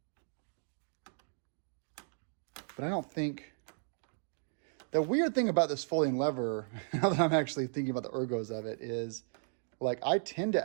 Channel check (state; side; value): silent; left; digital silence